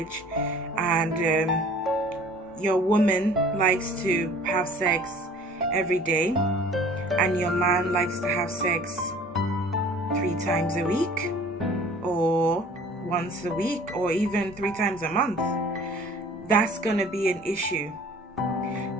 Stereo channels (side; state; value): both; normal; correlation 0.49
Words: and your woman likes to have sex every day and your man likes to have sex 3 times a week or once a week or even 3 times a month. That's gonna be an issue